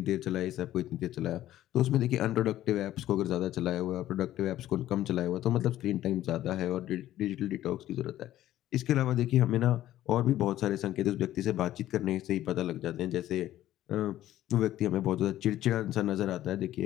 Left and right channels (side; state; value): right; quieter; 13.5 dB